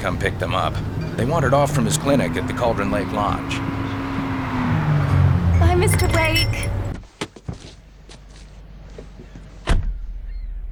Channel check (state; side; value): identical; both; correlation 1.00